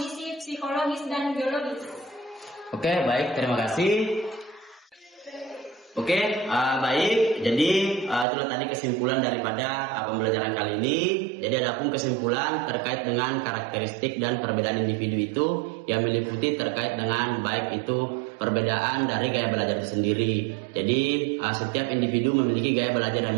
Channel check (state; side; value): drops out; left; at 8.2 s